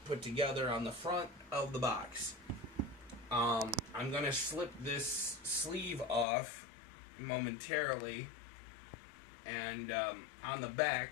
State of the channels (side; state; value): right; drops out; at 6.2 s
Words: put together on the front of the box. I'm going to slip this sleeve off momentarily, and on the